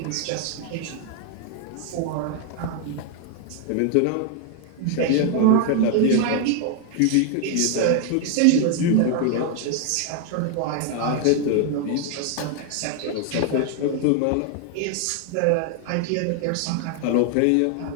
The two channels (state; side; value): different; both; correlation 0.00